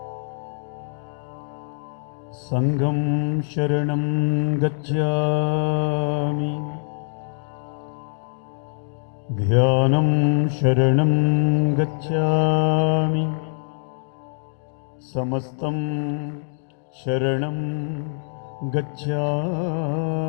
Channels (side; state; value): right; silent; digital silence